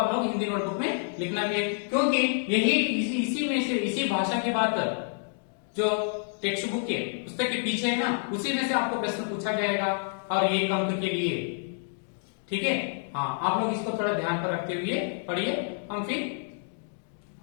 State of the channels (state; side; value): silent; right; 59 dB below the other